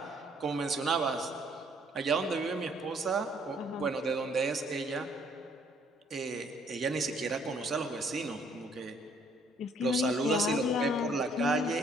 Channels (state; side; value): normal; both; correlation 0.64